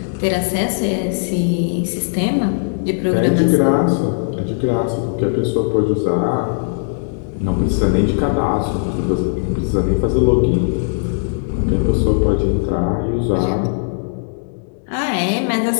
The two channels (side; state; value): right; silent; digital silence